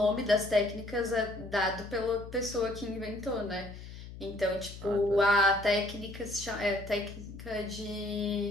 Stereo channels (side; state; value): left; noise; hum, 13 dB below the sound